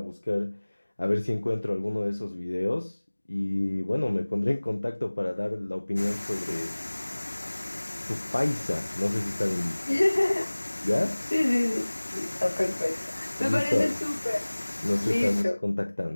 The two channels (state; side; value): inverted; both; correlation -1.00